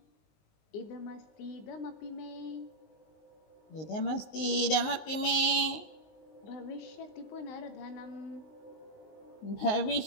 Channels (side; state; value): right; late; 19 ms